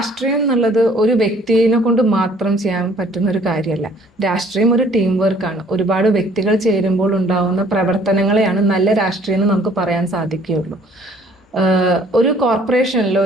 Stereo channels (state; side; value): normal; both; correlation 0.58